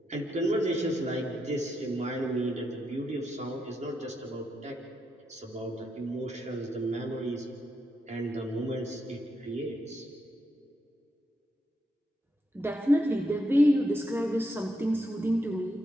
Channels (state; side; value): normal; both; correlation 0.82